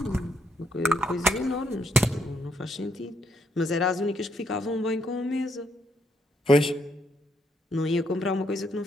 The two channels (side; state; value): both; normal; correlation 0.74